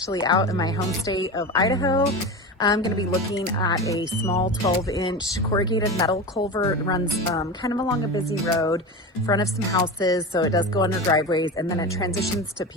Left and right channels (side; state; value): both; normal; correlation 0.25